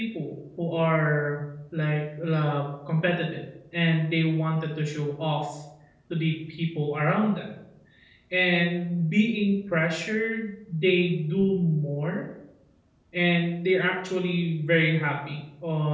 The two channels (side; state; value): both; identical; correlation 1.00